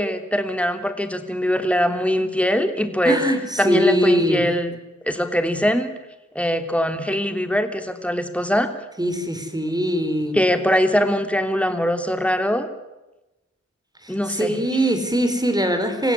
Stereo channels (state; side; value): normal; both; correlation 0.79